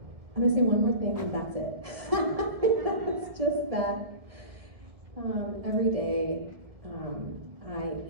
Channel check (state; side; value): late; left; 1.7 ms